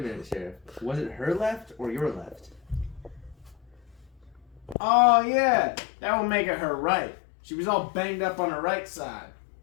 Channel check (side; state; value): right; drops out; at 4.8 s